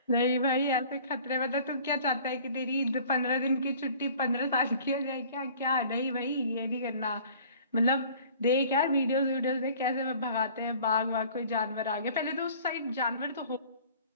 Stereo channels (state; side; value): inverted; both; correlation -0.50